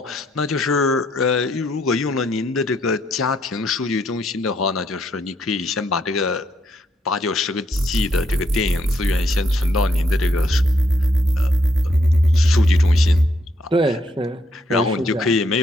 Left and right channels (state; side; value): normal; both; correlation 0.74